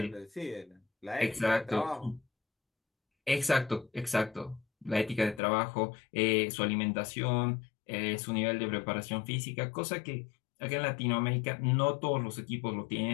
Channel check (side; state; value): right; drops out; at 5.4 s